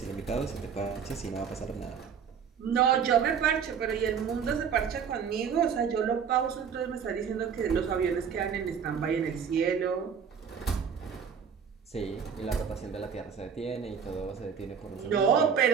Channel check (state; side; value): quieter; left; 7.1 dB